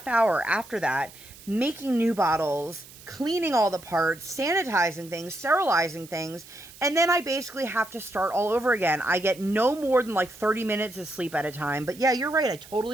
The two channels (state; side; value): noise; right; hiss, 20 dB below the sound